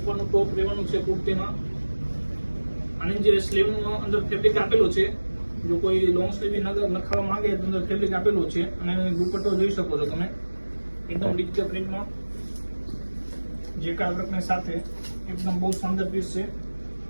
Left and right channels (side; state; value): both; inverted; correlation -1.00